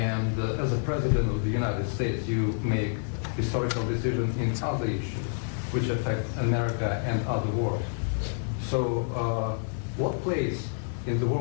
as a president of the United States, you make historical decisions in other issues which affect America and other world. So what place in the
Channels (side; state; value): right; silent; digital silence